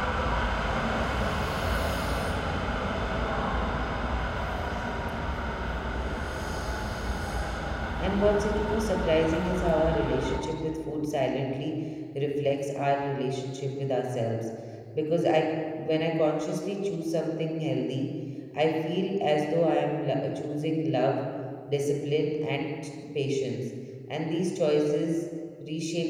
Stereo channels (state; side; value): identical; both; correlation 1.00